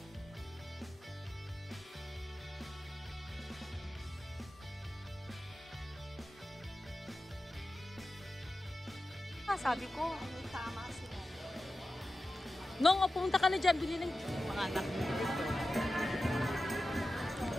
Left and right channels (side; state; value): both; normal; correlation 0.93